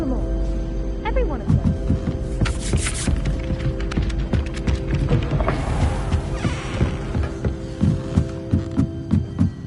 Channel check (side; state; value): both; identical; correlation 1.00